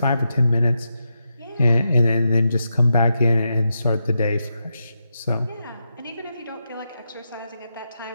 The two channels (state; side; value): inverted; both; correlation -0.86